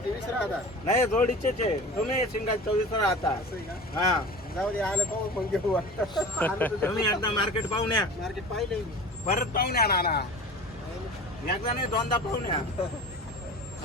नाही जोडीचेच आहे. तुम्ही सिंगल 24 राहता. हा जाऊ दे आलं पाहू मग घेऊ. तुम्ही एकदा मार्केट पाहून या. मार्केट पाहिलं परत पाहून या नाना. एकदा नाही 2दा पाहून या.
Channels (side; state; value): both; normal; correlation 0.37